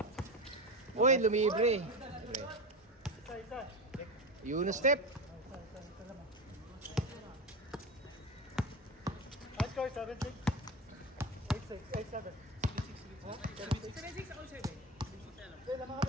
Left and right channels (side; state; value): both; normal; correlation 0.23